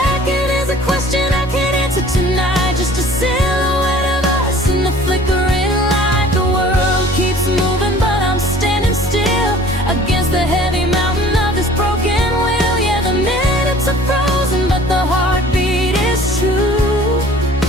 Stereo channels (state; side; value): normal; both; correlation 0.49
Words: is a question I can't answer tonight, just a silhouette of us in the flickering light. The world keeps moving, but I'm standing still against the heavy mountain of this broken will. Yeah, the minutes are frozen, but the heartbeat is true.